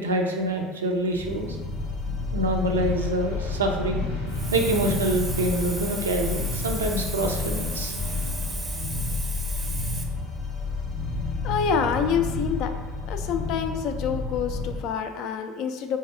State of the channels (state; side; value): normal; both; correlation 0.31